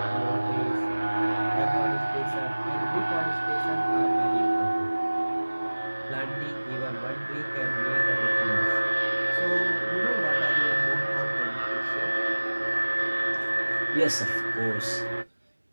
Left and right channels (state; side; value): inverted; both; correlation -1.00